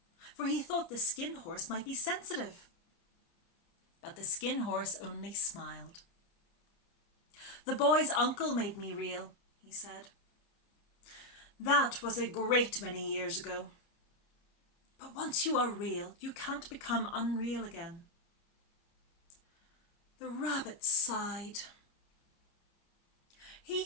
for he thought the Skin Horse might be sensitive. But the Skin Horse only smiled. "The boy's uncle made me real," he said. "That was a great many years ago. But once you are real, you can't become unreal again." The rabbit sighed. He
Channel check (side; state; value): right; late; 29 ms